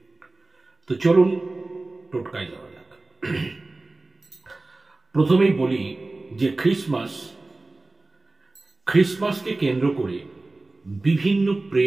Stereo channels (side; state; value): left; quieter; 3.1 dB